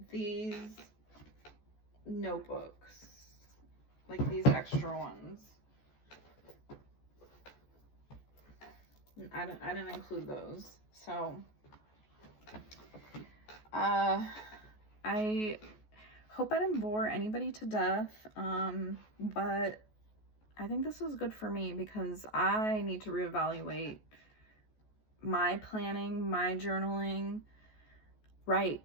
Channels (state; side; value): late; right; 14 ms